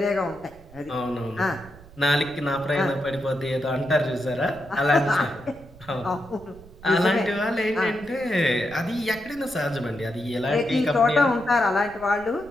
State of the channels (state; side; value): noise; right; rumble, 21 dB below the sound